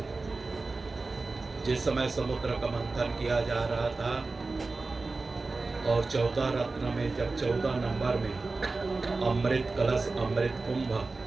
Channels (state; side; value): quieter; left; 3.7 dB